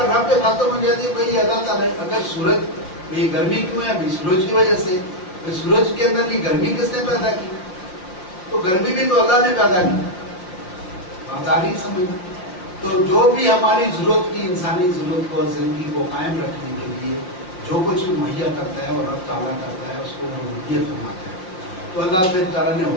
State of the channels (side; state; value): right; late; 5.6 ms